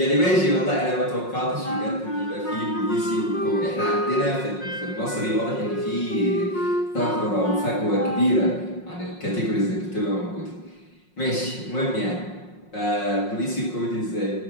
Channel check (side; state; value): right; late; 5.5 ms